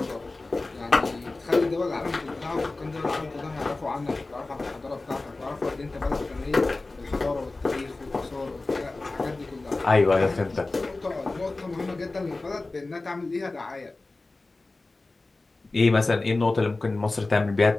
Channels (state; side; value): quieter; right; 3.3 dB